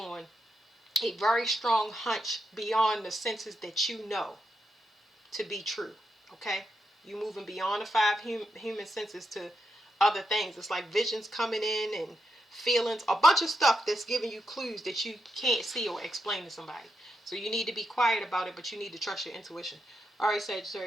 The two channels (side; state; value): both; normal; correlation 0.84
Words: a very strong hunch beyond the senses that you know to be true. Okay? You moving beyond the five human senses to other things. It's like visions coming in and feelings, a bunch of stuff that's giving you clues that you can't see or explain to somebody. So you need to be quiet about it, but you need to trust your intuition. All right,